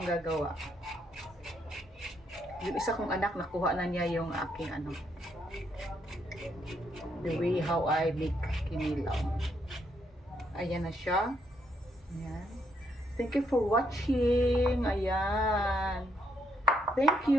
gagawa. Yung isa kong anak, nakuha na niya yung aking ano. The way how I make kinilaw. Ayan na siya. Ayan. Thank you for watching. Ayan. Thank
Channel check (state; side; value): normal; both; correlation 0.75